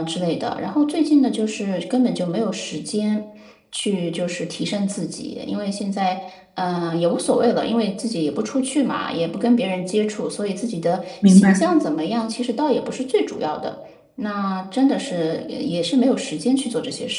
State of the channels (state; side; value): identical; both; correlation 1.00